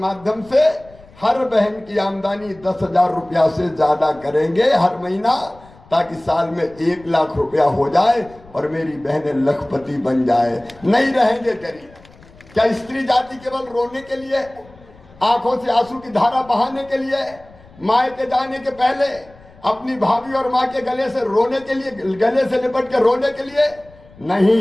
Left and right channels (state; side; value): noise; left; rumble, 25 dB below the sound